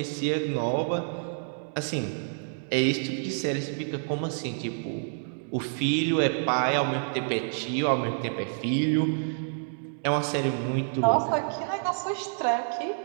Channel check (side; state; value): left; silent; 59 dB below the other